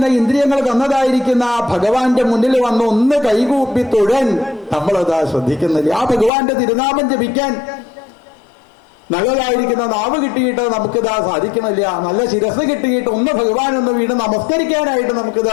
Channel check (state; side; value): drops out; right; at 6.3 s